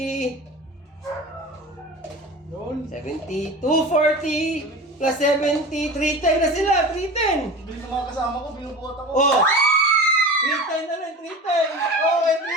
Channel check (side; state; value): both; normal; correlation 0.33